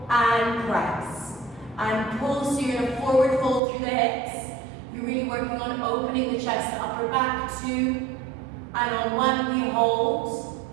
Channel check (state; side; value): drops out; left; at 3.6 s